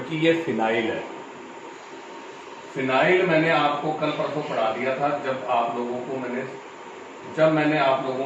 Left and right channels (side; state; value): both; identical; correlation 1.00